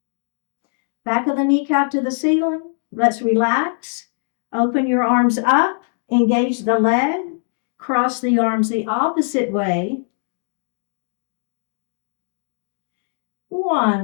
Back of the kneecap to the ceiling. Let's relax. Open your arms up. Engage the leg. Cross the arms the opposite way.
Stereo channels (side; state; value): right; silent; 65 dB below the other